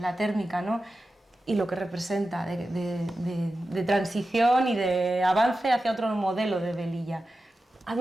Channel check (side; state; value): both; normal; correlation 0.92